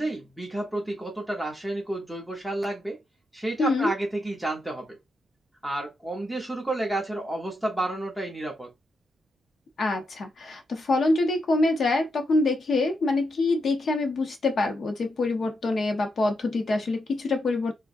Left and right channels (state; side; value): normal; both; correlation 0.83